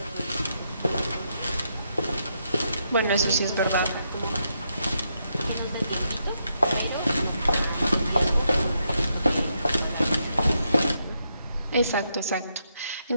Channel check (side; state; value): both; inverted; correlation -0.80